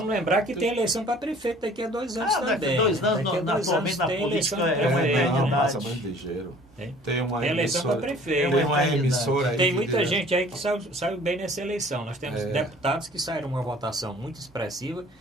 lembrar que tem eleição para prefeito daqui a 2 anos também. Daqui a 2 anos, atualmente na política é uma eternidade. Tem uma eleição para prefeito. Tem uma emissora aí. Tem muita gente aí que saiu bem nessa eleição. Nós temos deputados que saíram uma votação muito expressiva.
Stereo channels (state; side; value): normal; both; correlation 0.51